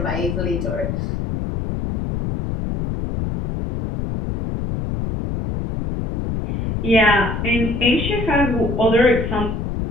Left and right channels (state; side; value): noise; left; rumble, 3 dB below the sound